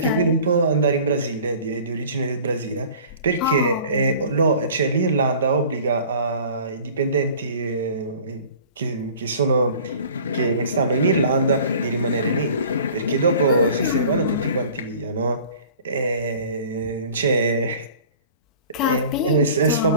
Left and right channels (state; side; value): inverted; both; correlation -0.47